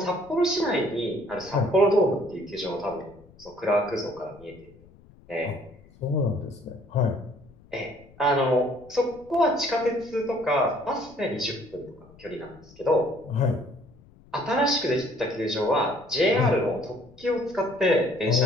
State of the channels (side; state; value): left; noise; rumble, 25 dB below the sound